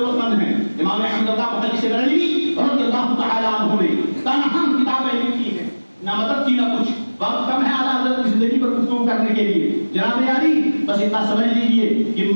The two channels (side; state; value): both; inverted; correlation -1.00